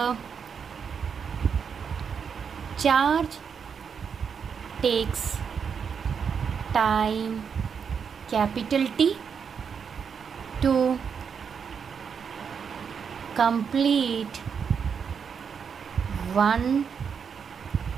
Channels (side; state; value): left; quieter; 6.7 dB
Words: charge takes time capital T to complete one